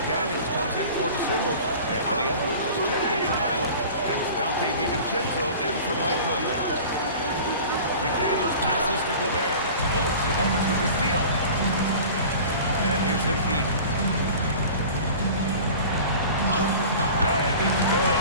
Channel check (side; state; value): both; inverted; correlation -0.40